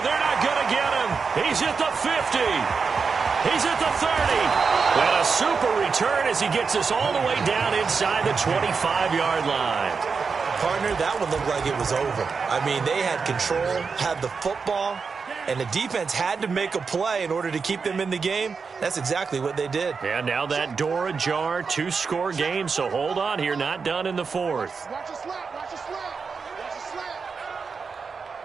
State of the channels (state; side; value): quieter; left; 5.2 dB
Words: They're not going to get him. He's at the 50. He's at the 30. And a super return as he gets us all the way down inside the 25-yard line. Partner, that one looked like it was over. I mean, they had control, had the football, and the defense had to make a play in order to keep them in the game. That's exactly what they did. And now that door ajar, 2-score game, so hold on here, not done in the 4th. Watch a slant, watch a slant, watch a slant.